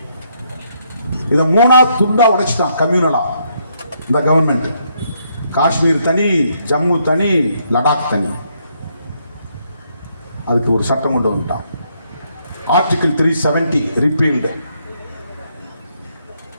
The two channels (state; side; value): inverted; both; correlation -0.74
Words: இதை 3ஆ துண்டா உடைச்சிட்டான் கம்யூனலா இந்த கவர்மெண்ட். காஷ்மீர் தனி, ஜம்மு தனி, லடாக் தனி. அதுக்கு ஒரு சட்டம் கொண்டு வந்துட்டான், ஆர்டிகிள் 370 ரிப்பீல்டு.